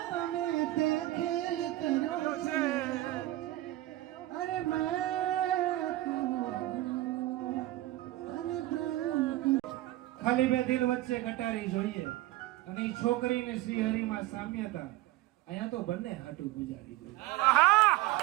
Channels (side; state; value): left; quieter; 16.4 dB